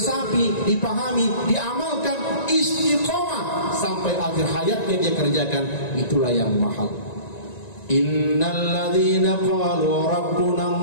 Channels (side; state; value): right; late; 1.9 ms